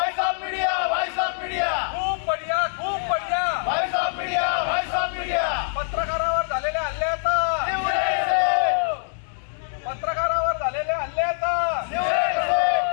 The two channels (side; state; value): right; silent; 63 dB below the other